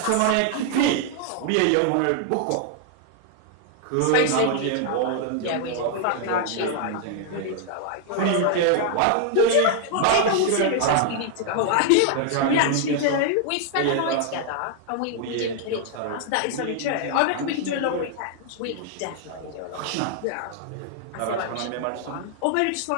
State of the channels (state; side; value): different; both; correlation 0.00